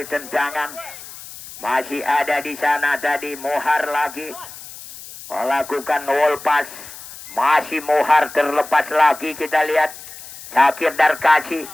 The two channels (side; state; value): left; noise; hiss, 15 dB below the sound